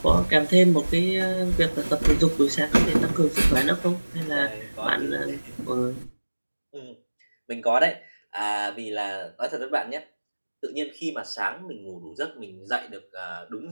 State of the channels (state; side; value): inverted; both; correlation -1.00